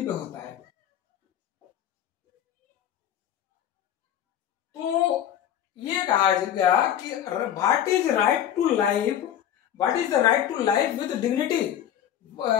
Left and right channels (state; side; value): quieter; right; 10.4 dB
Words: होता है। तो ये कहा गया कि what is right to life, what is the right to life with dignity,